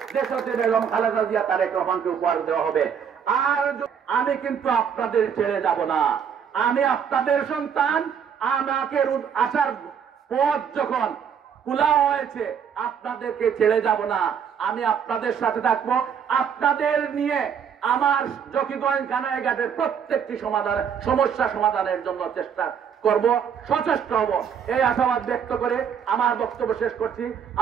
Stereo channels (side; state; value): left; quieter; 7.6 dB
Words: দেশতে বেগম খালেদা জিয়া তারেক রহমানকে উপহার দেওয়া হবে। আর আমি কিন্তু আপনাদের ছেড়ে যাব না, আমি আপনাদের সন্তান। আমাকে আসার পথ যখন খোলা হয়েছে, আপনাদেরকে ছেড়ে যাব না, আমি আপনাদের সাথে থাকবো। আপনাদের নিয়ে আমার জকিগঞ্জ থানাঘাটের প্রত্যেকটি সমস্যা সমাধানের জন্য চেষ্টা করব, সচেষ্ট হব, এই আশাবাদ ব্যক্ত করে আমার বক্তব্য শেষ করছি।